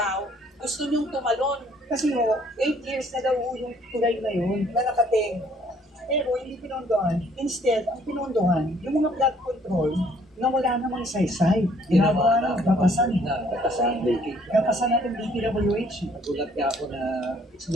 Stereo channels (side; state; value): both; normal; correlation 0.62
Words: gusto niyong tumalon. Kasi 8 years na daw yung tulay na yun na nakating. Pero hindi pinondohan. Instead, ang pinondohan, yung mga flood control na wala namang saysay. Ginagawa ng kapasan. Kapasan natin DPWH. Nagulat niya ako na it's